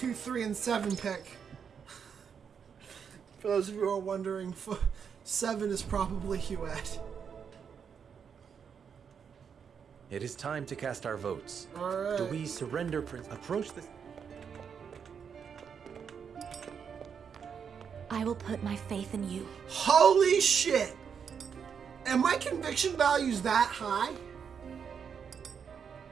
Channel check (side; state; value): left; quieter; 7.0 dB